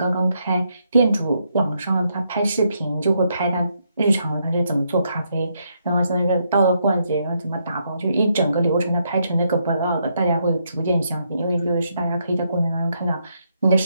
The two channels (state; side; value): inverted; both; correlation -0.77